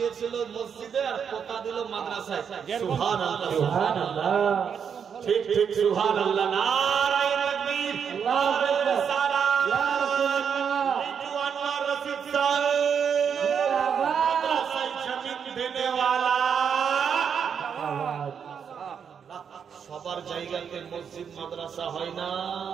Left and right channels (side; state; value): left; quieter; 7.2 dB